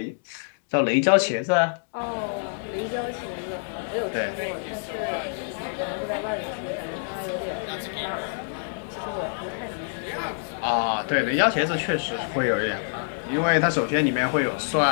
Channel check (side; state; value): right; silent; digital silence